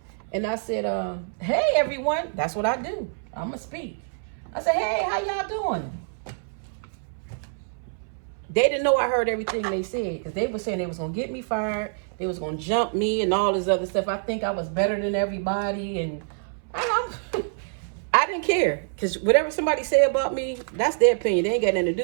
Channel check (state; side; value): silent; left; 61 dB below the other